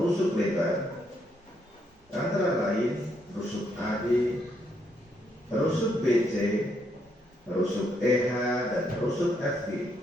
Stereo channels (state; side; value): normal; both; correlation 0.75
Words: rusuk lebar antara lain rusuk AD, rusuk BC, rusuk EH, dan rusuk FG.